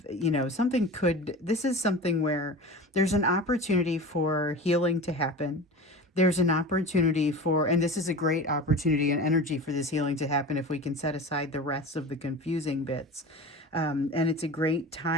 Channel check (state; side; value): normal; both; correlation 0.33